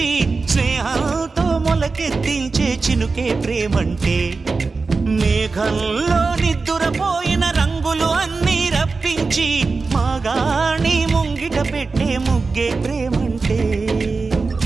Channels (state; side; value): quieter; left; 4.2 dB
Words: స్నేహంతో మొలకెత్తించే చినుకే ప్రేమంటే, మేఘంలో నిద్దురపోయిన రంగులు అన్నీ రప్పించి మాగాణి ముంగిట పెట్టే ముగ్గే ప్రేమంటే.